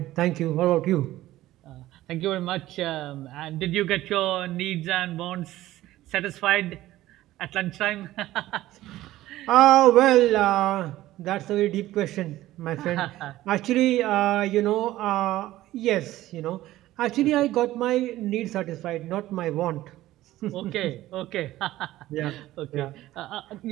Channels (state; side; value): quieter; left; 15.5 dB